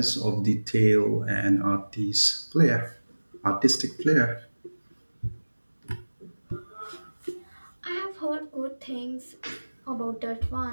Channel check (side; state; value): both; inverted; correlation -1.00